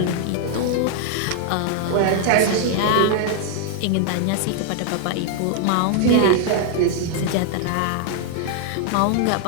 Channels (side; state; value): both; different; correlation 0.00